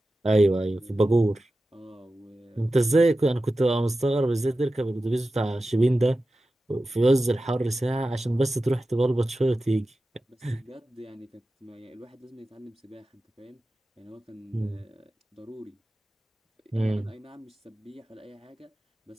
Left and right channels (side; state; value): both; normal; correlation 0.94